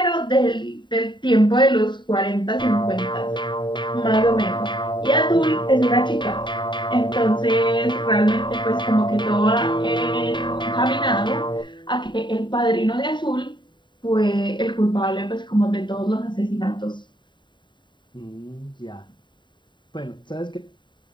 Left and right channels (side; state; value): right; late; 0.23 ms